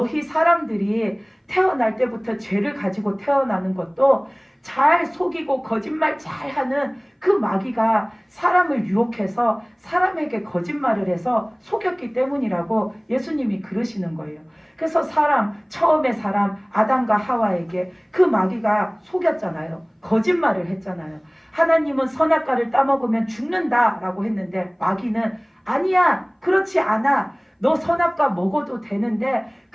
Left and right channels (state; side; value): identical; both; correlation 1.00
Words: 사람들이 태어날 때부터 죄를 가지고 태어나는 것도 잘 속이고 거짓말 잘하는 그 마귀가 사람을 유혹해서 사람에게 거짓말을 해서 속였기 때문이라고 예수님이 그러시는 거예요. 그래서 처음에 사람 아담과 하와에게 그 마귀가 속였잖아요. 거짓말을 했잖아요. 하나님은 선악과를 따먹으면 죽는다라고 했는데 마귀는 아니야, 그렇지 않아. 너 선악과 먹어도 되는데